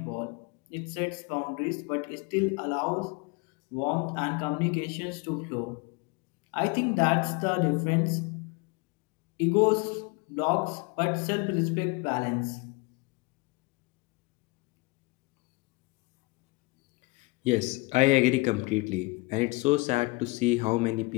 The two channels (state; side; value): quieter; right; 25.9 dB